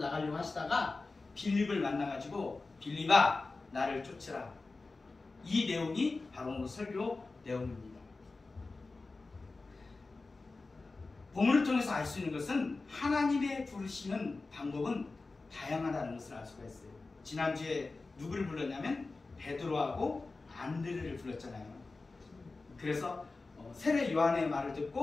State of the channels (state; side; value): quieter; right; 3.6 dB